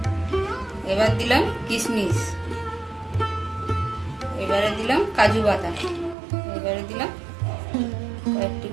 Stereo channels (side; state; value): left; drops out; at 6.2 s